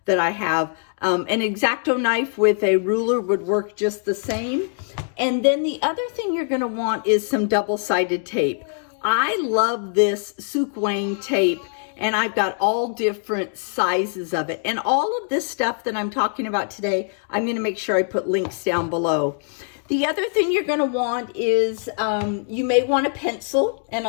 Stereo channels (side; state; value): right; silent; 63 dB below the other